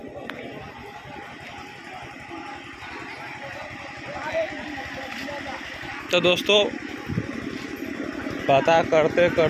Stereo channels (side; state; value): both; identical; correlation 1.00